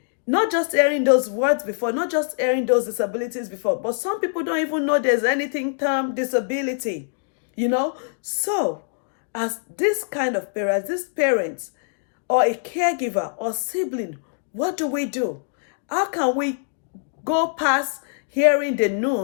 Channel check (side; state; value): right; silent; digital silence